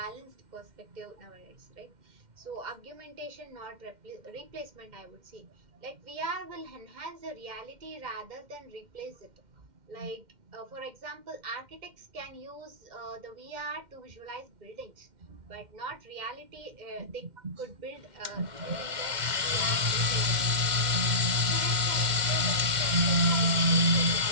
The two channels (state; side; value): late; left; 2.1 ms